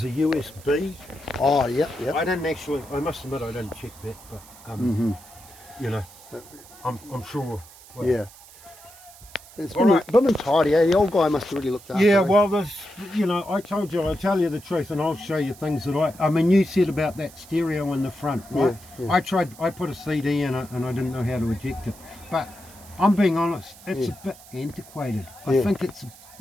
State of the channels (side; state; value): right; noise; hiss, 21 dB below the sound